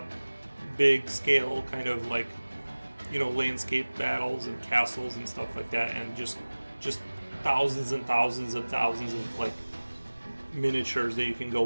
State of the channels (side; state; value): both; inverted; correlation -1.00